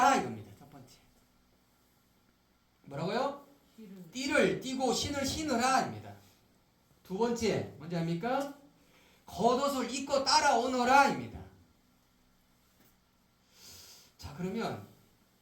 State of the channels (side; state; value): both; identical; correlation 1.00